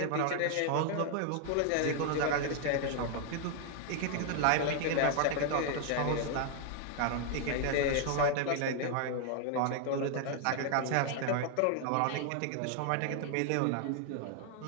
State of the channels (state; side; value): different; both; correlation 0.00